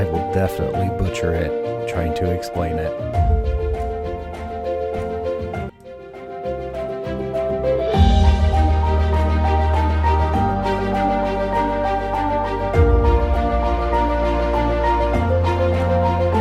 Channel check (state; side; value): identical; both; correlation 1.00